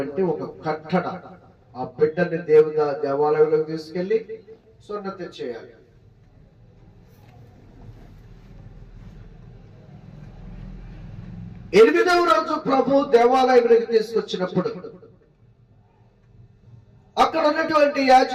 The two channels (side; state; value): both; identical; correlation 1.00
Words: ఒక కట్టడ. ఆ బిడ్డని దేవాలయంలోకి తీసుకెళ్లి సున్నతి చేయాలి. ఎనిమిదవ రోజు ప్రభు దేవాలయంలోకి తీసుకొచ్చినప్పుడు అక్కడ ఉన్నటువంటి